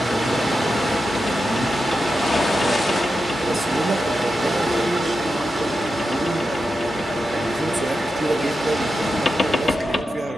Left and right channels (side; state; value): both; normal; correlation 0.89